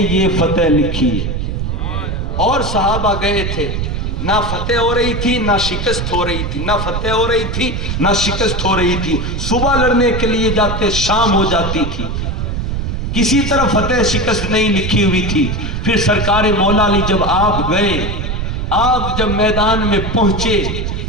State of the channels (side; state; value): right; noise; rumble, 2 dB below the sound